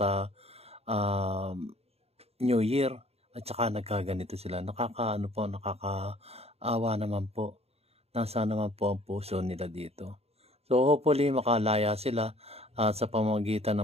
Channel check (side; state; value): left; late; 0.30 ms